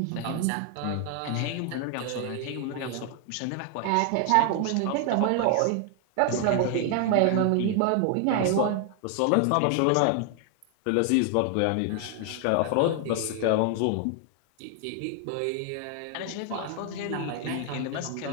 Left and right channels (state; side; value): different; both; correlation 0.00